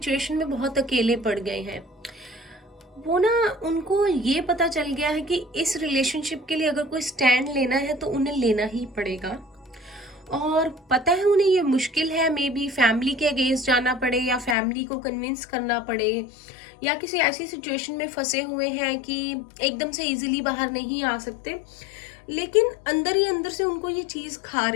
में बहुत अकेले पड़ गए हैं। वो ना, उनको ये पता चल गया है कि इस रिलेशनशिप के लिए अगर कोई स्टैंड लेना है तो उन्हें लेना ही पड़ेगा, और पता है उन्हें ये मुश्किल है। मे बी फैमिली के अगेंस्ट जाना पड़े या फैमिली को कन्विंस करना पड़े, या किसी ऐसी सिचुएशन में फंसे हुए हैं कि एकदम से इजीली बाहर नहीं आ सकते, लेकिन अंदर ही अंदर से उनको ये चीज़ खा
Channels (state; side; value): drops out; right; at 14.6 s